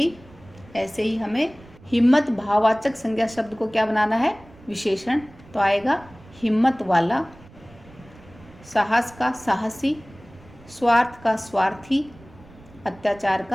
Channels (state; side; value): noise; right; rumble, 23 dB below the sound